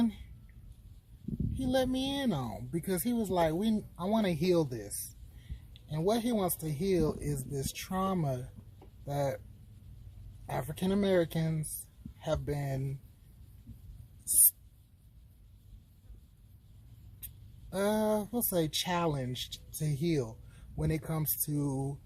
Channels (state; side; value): identical; both; correlation 1.00